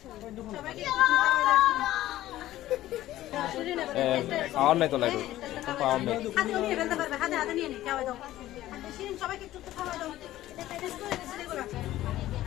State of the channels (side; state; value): right; quieter; 14.7 dB